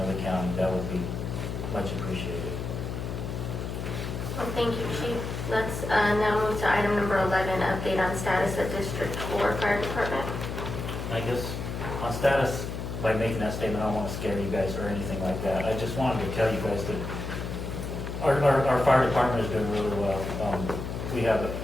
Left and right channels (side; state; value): left; noise; hum, 5 dB below the sound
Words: the county. That would be much appreciated. Well, thank you, Chief. Let's now move to item number 11, update on status of District 4 Fire Department. I guess on status, by making that statement, I don't want to scare you guys or anything like that. I just wanted to tell you guys that our fire department is doing really well. We have